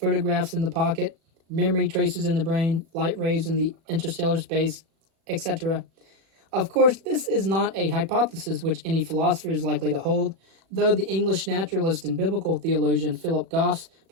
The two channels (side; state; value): left; late; 37 ms